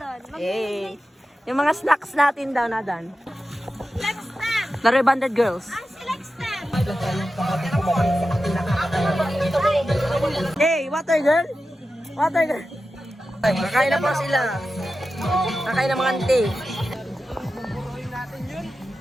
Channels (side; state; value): both; normal; correlation 0.92